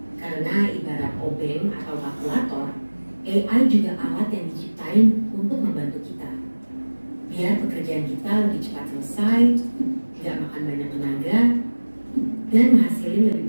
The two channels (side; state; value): both; inverted; correlation -1.00